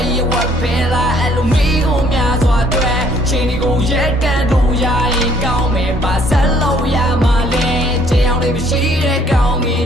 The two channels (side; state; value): both; normal; correlation 0.63